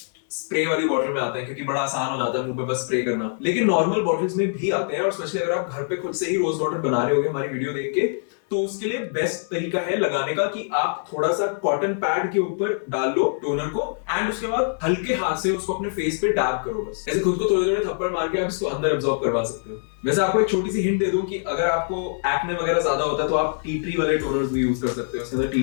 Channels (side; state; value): right; silent; digital silence